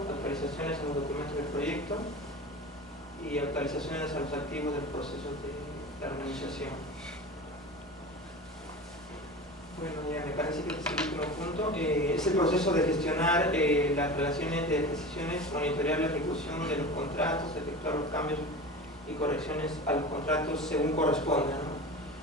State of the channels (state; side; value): normal; both; correlation 0.32